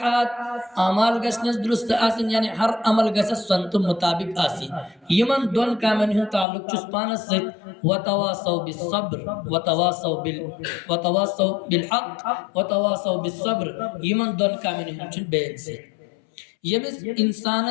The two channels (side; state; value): right; drops out; at 6.5 s